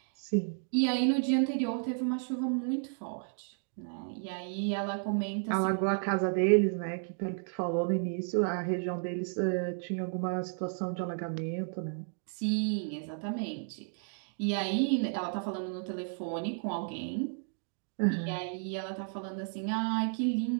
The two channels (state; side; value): silent; left; 56 dB below the other